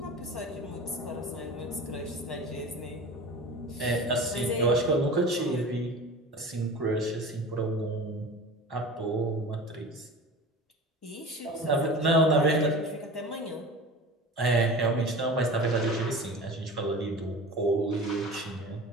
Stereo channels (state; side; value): normal; both; correlation 0.36